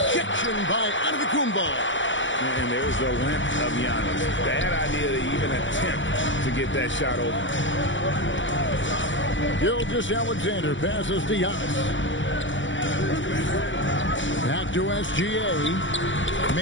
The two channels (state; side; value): late; right; 0.55 ms